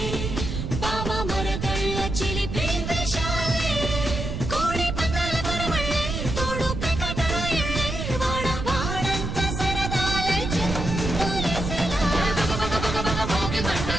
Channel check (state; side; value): noise; right; rumble, 4 dB below the sound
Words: బావ మరదళ్ళ చిలిపి వేషాలే కోడి పందాల పరమళ్ళే తోడు పెకటరాయళ్ళే వాడ వాడంత సరదాలే చెంతులేసేలా భోగి